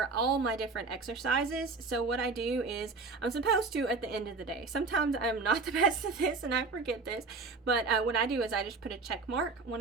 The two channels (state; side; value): quieter; left; 4.1 dB